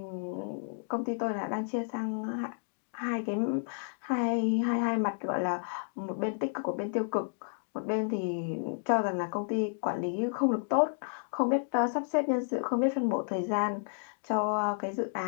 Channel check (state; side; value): silent; right; digital silence